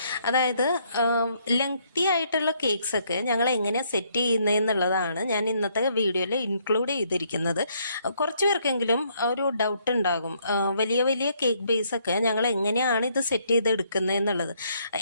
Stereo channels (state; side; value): inverted; both; correlation -0.70